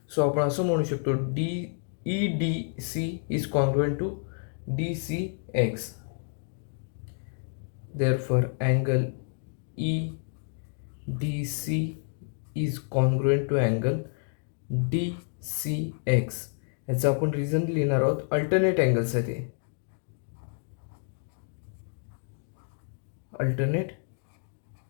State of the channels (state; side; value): silent; right; 58 dB below the other